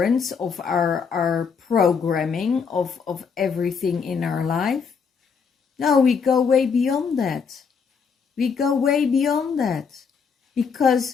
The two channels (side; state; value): right; quieter; 5.9 dB